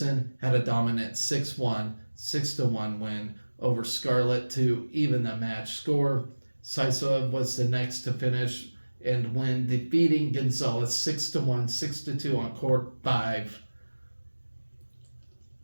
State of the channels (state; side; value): inverted; both; correlation -1.00